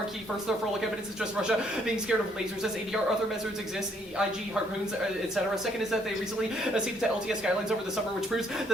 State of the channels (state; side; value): normal; both; correlation 0.68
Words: key. First, their frolic evidence is just Russia being scared of lasers as ADR. Other measures exist, IG, harpoons, etc. Second is that they recently ceded to LTS guidelines over the summer, which proves that